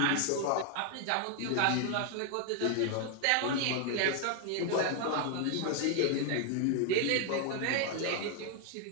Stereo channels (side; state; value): both; different; correlation 0.00